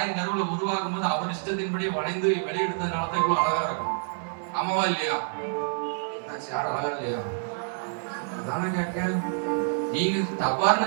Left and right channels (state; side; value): silent; left; digital silence